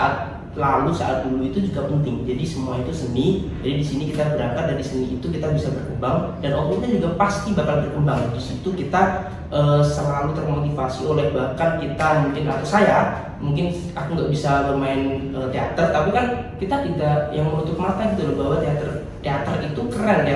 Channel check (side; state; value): both; identical; correlation 1.00